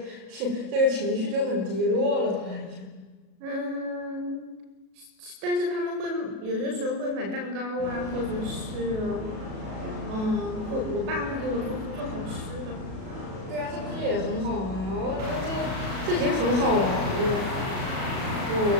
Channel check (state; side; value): late; left; 37 ms